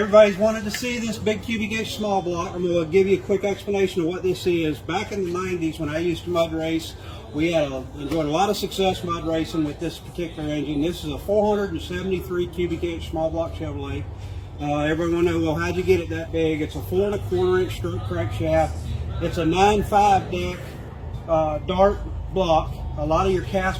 wanted to see this big cubic inch small block. I'm going to give you a quick explanation of what this is. Back in the 90s when I used to mud race, we enjoyed a lot of success mud racing with this particular engine. This is a 473 cubic inch small block Chevrolet. Everyone will know, well, how'd you get it that big? It's a 4 1/4 inch stroke crankshaft. It's a 9.5 deck Dart block. A lot of your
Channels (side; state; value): both; identical; correlation 1.00